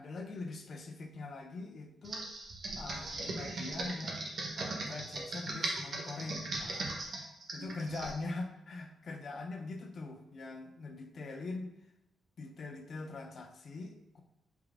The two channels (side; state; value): both; normal; correlation 0.82